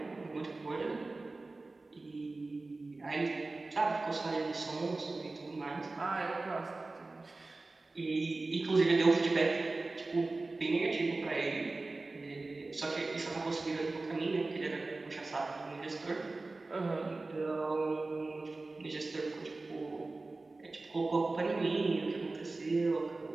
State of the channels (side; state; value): left; quieter; 3.3 dB